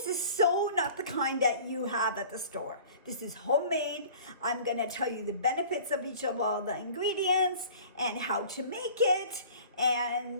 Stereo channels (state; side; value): inverted; both; correlation -0.46